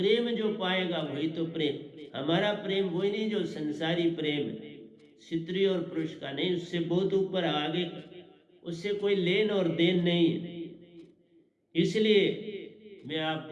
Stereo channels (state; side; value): identical; both; correlation 1.00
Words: जो पाएगा वही तो प्रेम। हमारा प्रेम वही नहीं जो संसारी प्रेम है, स्त्री और पुरुष का नहीं, उससे बहुत ऊपर आगे, उससे कोई लेन और देन नहीं है। इसलिए मैं